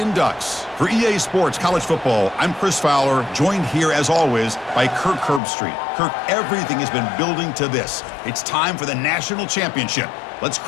Ducks. For EA Sports College Football, I'm Chris Fowler, joined here as always by Kirk Herbstreit. Kirk, everything has been building to this. It's time for the national championship. Let's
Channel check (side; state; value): right; drops out; at 5.4 s